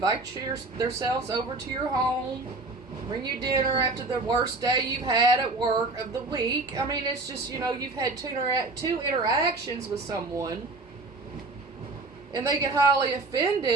themselves over to your home, bring you dinner after the worst day you've had at work of the week. I mean, it's just, you've had 2 interactions with someone, and they get highly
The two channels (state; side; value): quieter; left; 3.3 dB